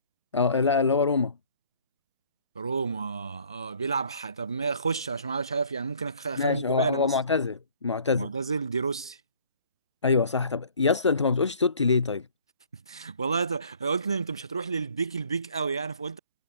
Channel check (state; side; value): inverted; both; correlation -0.55